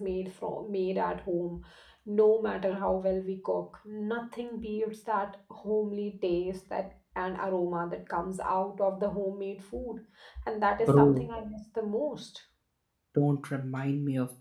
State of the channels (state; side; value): identical; both; correlation 1.00